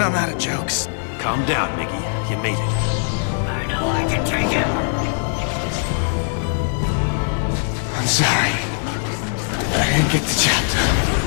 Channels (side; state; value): right; silent; digital silence